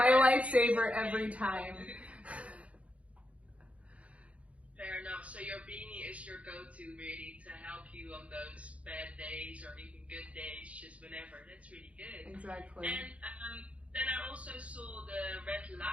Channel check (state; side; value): late; left; 0.064 ms